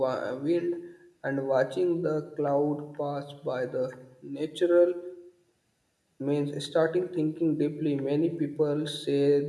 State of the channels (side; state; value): both; identical; correlation 1.00